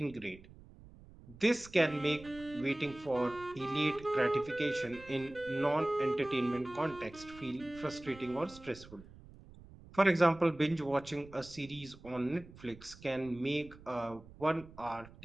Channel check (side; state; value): right; noise; rumble, 20 dB below the sound